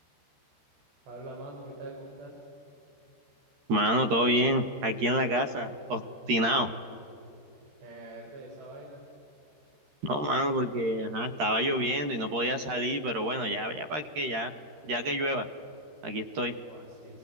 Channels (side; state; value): left; late; 13 ms